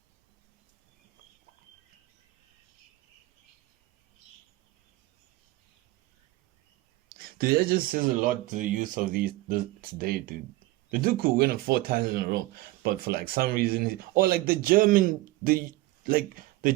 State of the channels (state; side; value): quieter; left; 19.2 dB